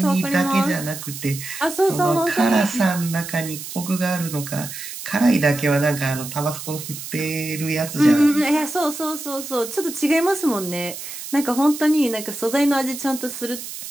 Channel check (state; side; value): noise; right; hiss, 10 dB below the sound